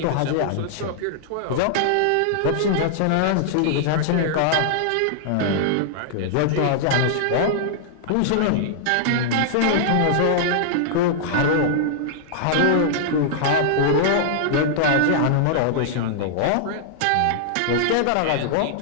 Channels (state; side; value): different; both; correlation -0.01